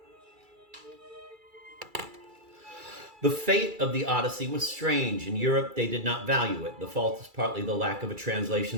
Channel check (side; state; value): left; late; 2.3 ms